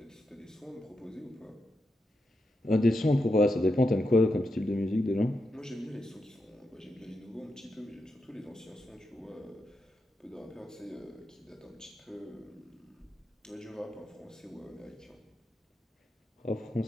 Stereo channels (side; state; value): both; normal; correlation 0.86